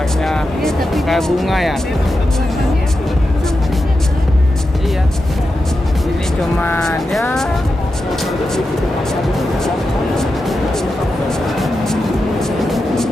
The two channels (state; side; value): normal; both; correlation 0.90